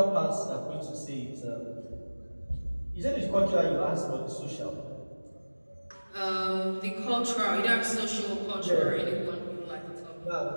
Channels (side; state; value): both; inverted; correlation -1.00